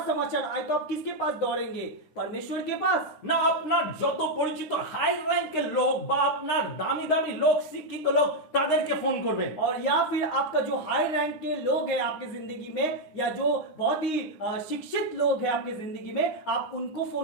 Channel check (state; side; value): late; right; 9.8 ms